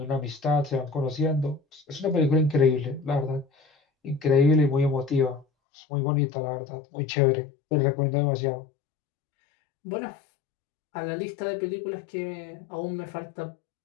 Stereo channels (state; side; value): drops out; right; at 5.5 s